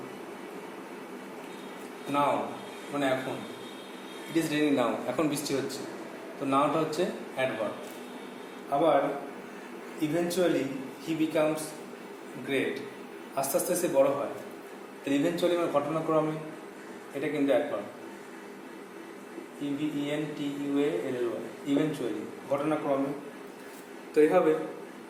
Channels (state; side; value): identical; both; correlation 1.00